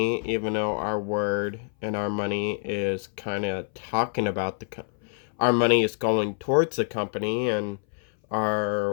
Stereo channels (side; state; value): right; silent; 59 dB below the other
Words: even though our word and our money is kind of talking about our money is going towards the company, and